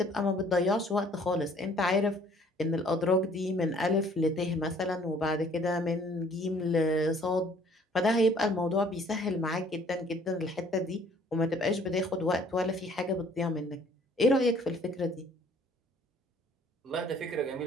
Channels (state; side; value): normal; both; correlation 0.58